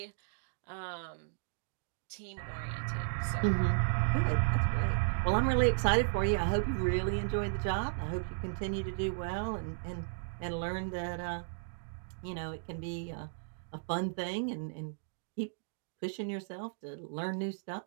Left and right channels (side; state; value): left; silent; digital silence